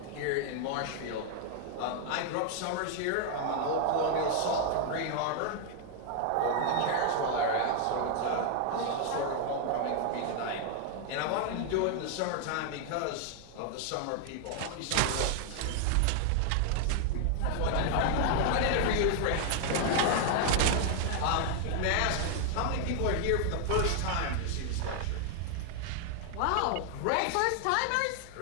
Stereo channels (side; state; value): both; different; correlation 0.00